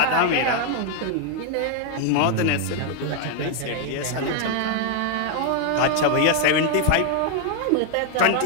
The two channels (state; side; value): different; both; correlation 0.00